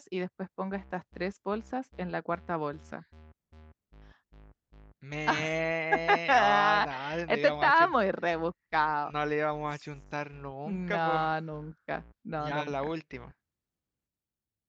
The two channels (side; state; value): both; identical; correlation 1.00